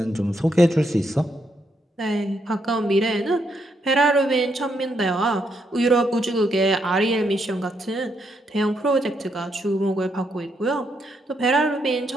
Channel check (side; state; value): both; normal; correlation 0.77